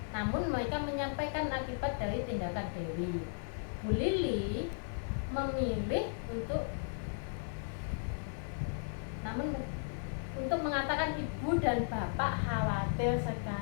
namun mereka menyampaikan akibat dari tindakan Dewi. Bu Lili memilih untuk mengatakan ibu dan bapak khawatir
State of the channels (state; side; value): silent; right; 54 dB below the other